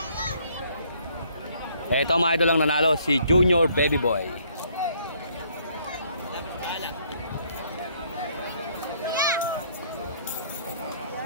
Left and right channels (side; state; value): both; inverted; correlation -0.65